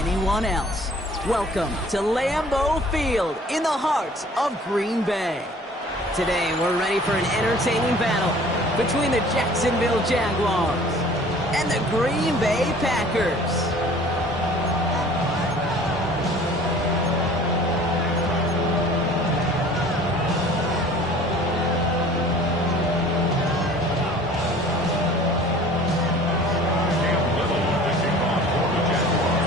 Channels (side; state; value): both; normal; correlation 0.49